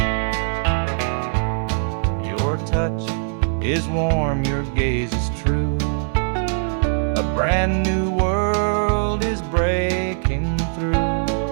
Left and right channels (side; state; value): left; silent; digital silence